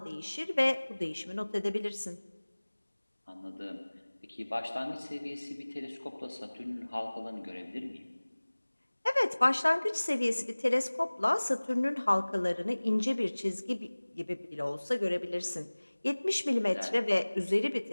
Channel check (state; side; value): inverted; both; correlation -1.00